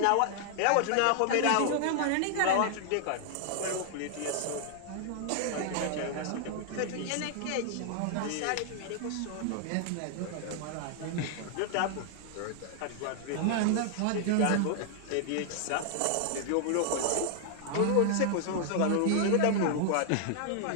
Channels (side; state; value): both; different; correlation 0.00